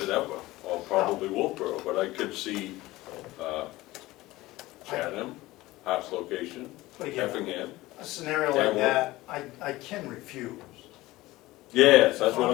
it ever, or probably Wolfboro, but I could see Chatham, Hart's location, But again, Effingham. a scenario like that, I can refuse. Yes, that's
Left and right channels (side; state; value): right; quieter; 18.5 dB